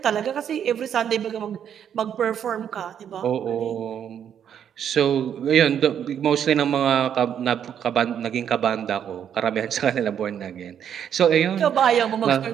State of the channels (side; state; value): left; quieter; 8.9 dB